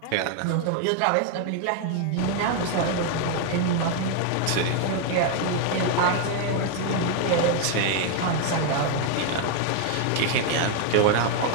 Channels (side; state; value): both; different; correlation 0.01